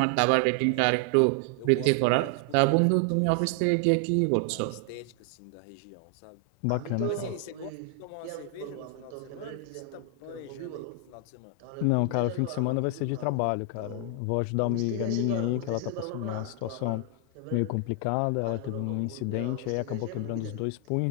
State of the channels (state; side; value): different; both; correlation 0.00